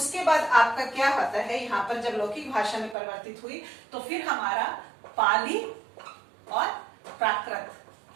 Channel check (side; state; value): left; drops out; at 3.0 s